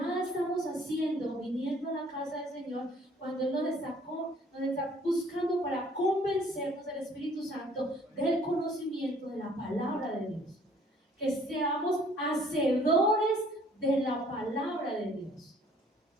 estamos haciendo viniendo a la casa del Señor cuando Él nos está buscando para convencernos del Espíritu Santo del conocimiento de la palabra de Dios. Que seamos hacedores de la palabra de Dios.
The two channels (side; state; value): both; normal; correlation 0.58